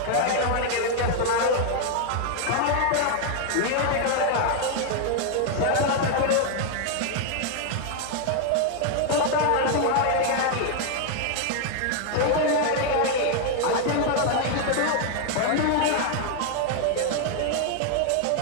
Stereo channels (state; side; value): different; both; correlation 0.00